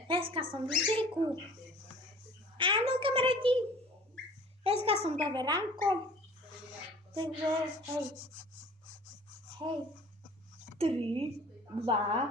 dneska som v cirku. Áno, kamaráti, dneska som dobre ránko. Takže, hej. 3, 2,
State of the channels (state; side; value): normal; both; correlation 0.47